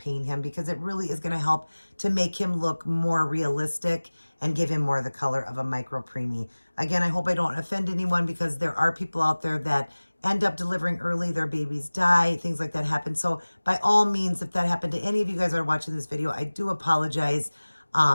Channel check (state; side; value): inverted; both; correlation -1.00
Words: him because it really is going to help to make him look more realistic and give him more of the color of a micro preemie. Again, I hope I don't offend anyone because there are people out there that end up delivering early, their babies die, things like that happen. So by all means, if that happened to any of you guys that are watching this video, I do apologize.